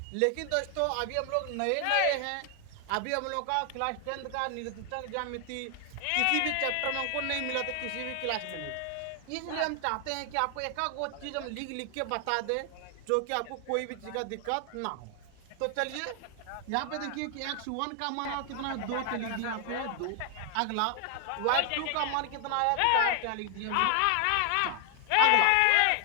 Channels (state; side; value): different; both; correlation 0.00